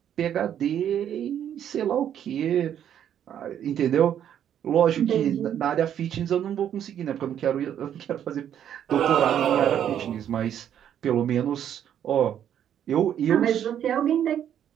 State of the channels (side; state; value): left; quieter; 9.8 dB